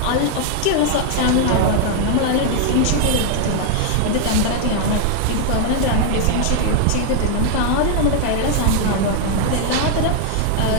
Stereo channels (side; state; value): both; different; correlation 0.00